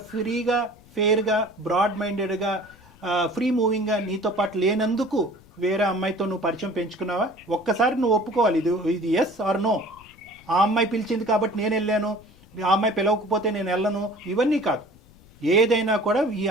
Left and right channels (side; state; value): left; noise; rumble, 26 dB below the sound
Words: ఫ్రీగా, ఫెయిర్గా, బ్రాడ్ మైండెడ్గా, ఫ్రీ మూవింగ్గా నీతో పాటు లేనందుకు వేరే అమ్మాయితో నువ్వు పరిచయం పెంచుకున్నావా? ఒక్కసారి నువ్వు ఒప్పుకోవాలి, ఇది ఎస్ ఆర్ నో. ఆ అమ్మాయి పిలిచింది కాబట్టి నేను వెళ్ళాను, ఆ అమ్మాయి పిలవకపోతే నేను వెళ్ళను, ఇవన్నీ కాదు. ఏదైనా కూడా ఈ